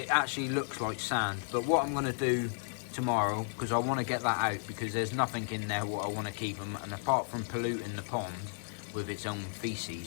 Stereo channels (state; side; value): silent; right; digital silence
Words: actually looks like sand. But what I'm going to do tomorrow, because I want to get that out, because there's nothing in there what I want to keep them, and apart from polluting the pond with its own